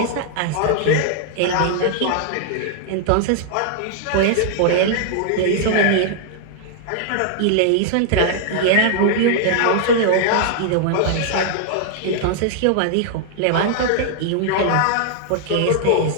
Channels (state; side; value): different; both; correlation 0.00